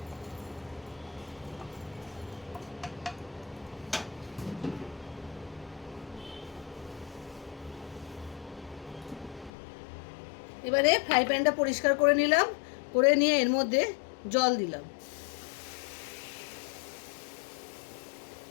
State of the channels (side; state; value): right; drops out; at 9.5 s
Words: এবারে ফ্রাই প্যানটা পরিষ্কার করে নিলাম, করে নিয়ে এর মধ্যে জল দিলাম।